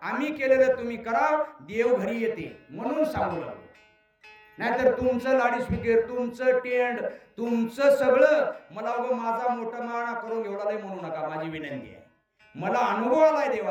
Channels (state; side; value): identical; both; correlation 1.00